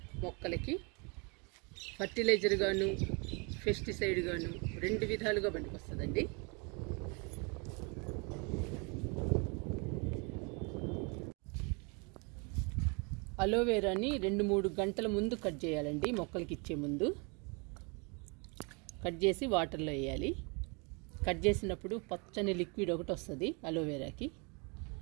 మొక్కలకి ఫర్టిలైజర్ గాను పెస్టిసైడ్ గాను రెండు విధాలుగా పనికొస్తుందండి. అలోవెరాని 2-3 గంటల ముందు కట్ చేయాలండి. మొక్కలకి ఇచ్చే ముందు కట్ చేసి వాటర్లో వేయాలి. కట్ చేసినప్పుడు పచ్చని లిక్విడ్ ఒకటి వస్తుంది అలోవెరాకి.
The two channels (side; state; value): left; quieter; 32.1 dB